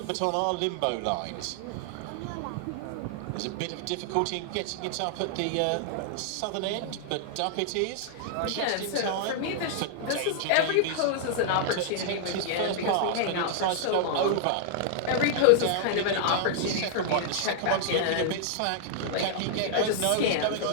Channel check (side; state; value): both; different; correlation -0.01